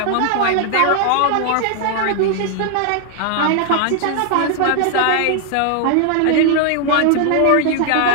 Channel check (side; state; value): both; different; correlation 0.00